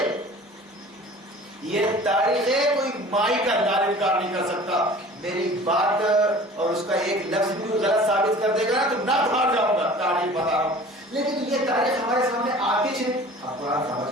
یہ تاریخ ہے، کوئی مائی کا انکار نہیں کر سکتا. میری بات اور اس کا ایک لفظ بھی غلط ثابت کر دے گا تو نہ بھاگ جاؤں گا، تاریخ بتا رہا ہوں. لیکن یہ تاریخ ہمارے سامنے آتی ہے، ہم قرآن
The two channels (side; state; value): both; normal; correlation 0.44